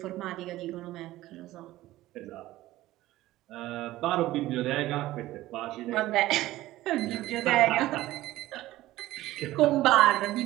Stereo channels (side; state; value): left; quieter; 16.2 dB